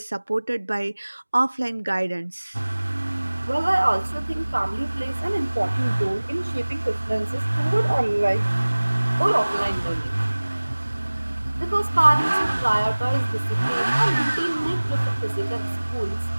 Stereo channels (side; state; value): both; inverted; correlation -1.00